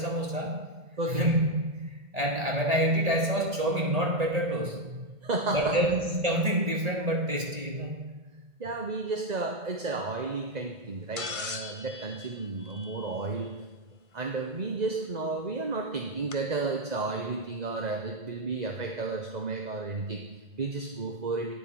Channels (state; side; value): late; left; 1.8 ms